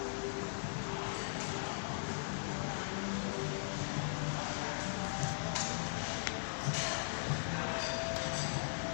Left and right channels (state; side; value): silent; right; digital silence